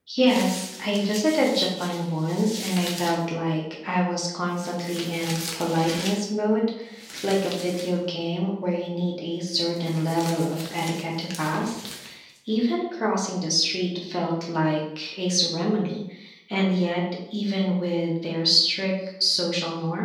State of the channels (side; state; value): both; identical; correlation 1.00